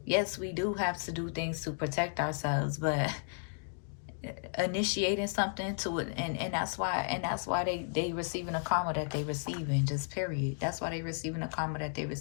Yes, we do have to do things to protect ourselves, but initiating something to it, and that's why they receiving the karma that they receiving. Just period. That's why they receiving the karma that they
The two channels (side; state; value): right; silent; digital silence